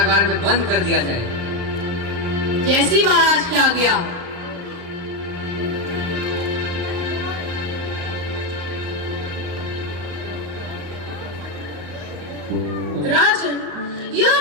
में बंद कर दिया जाए। जैसी महाराज की आज्ञा। राजन, यह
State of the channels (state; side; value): late; left; 35 ms